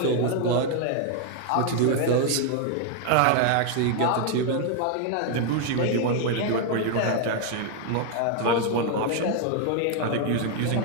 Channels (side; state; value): both; different; correlation 0.00